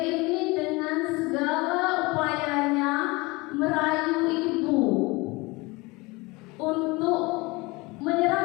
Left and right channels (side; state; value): right; quieter; 24.2 dB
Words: dengan segala upayanya merayu ibu untuk